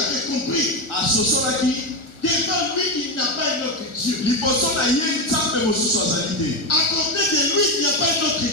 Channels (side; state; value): right; late; 1.4 ms